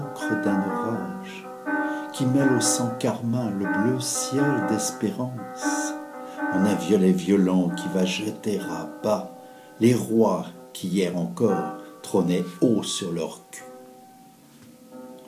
d'un orage qui mêle au sang carmin le bleu ciel d'espérance, en un violet violent qui va jeter à bas les rois qui hier encore trônaient haut sur leur cul.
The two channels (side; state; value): both; identical; correlation 1.00